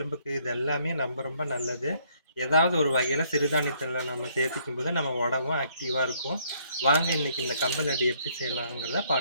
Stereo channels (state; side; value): inverted; both; correlation -0.67